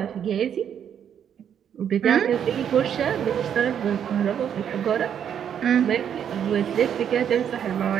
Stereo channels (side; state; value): left; quieter; 8.8 dB